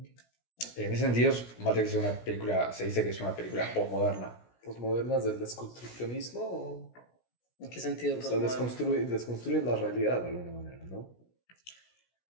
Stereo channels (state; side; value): late; right; 17 ms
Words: En ese sentido, Matrix se dice que es una película postmoderna. ¿Postmodernas del desconstruccionismo? ¿O? ¿En qué sentido? O sea, desconstruyen la realidad de alguna manera, ¿no?